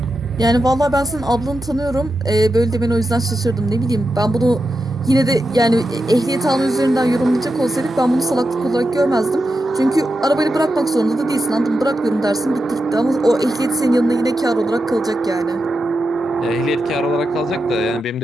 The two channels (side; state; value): both; normal; correlation 0.89